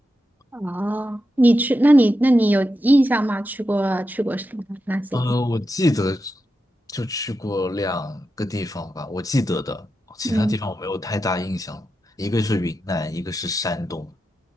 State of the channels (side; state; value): both; normal; correlation 0.88